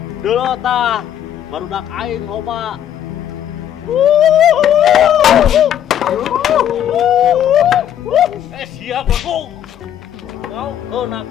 Dulu tah barudak aing loba. Siap aku. Kau kena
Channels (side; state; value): right; quieter; 10.3 dB